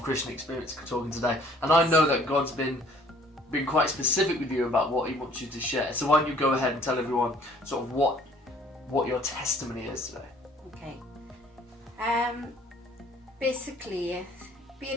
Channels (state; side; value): normal; both; correlation 0.57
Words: Christian experience talking today. And I know that God's been quite specific with you about what he wants you to share. So why don't you go ahead and tell everyone sort of what your testimony is today? Okay. Basically,